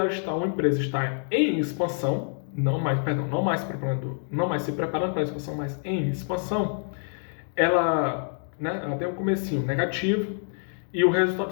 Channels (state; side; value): silent; right; digital silence